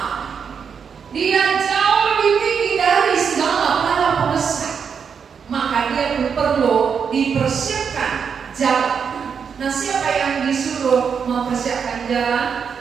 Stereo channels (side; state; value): left; quieter; 6.6 dB